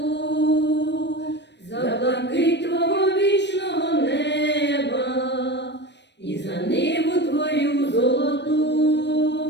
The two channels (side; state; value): right; late; 0.51 ms